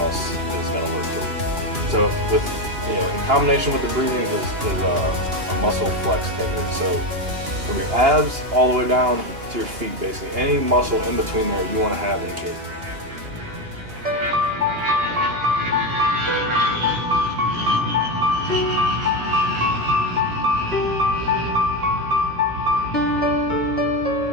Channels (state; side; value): late; left; 2.8 ms